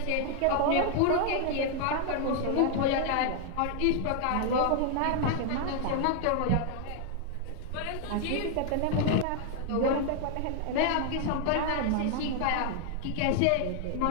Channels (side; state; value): both; different; correlation 0.00